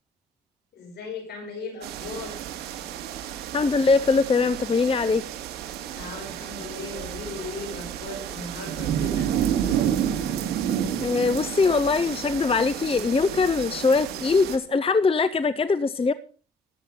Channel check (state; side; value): normal; both; correlation 0.55